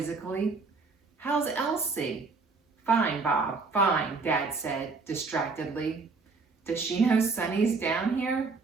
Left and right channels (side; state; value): left; quieter; 4.3 dB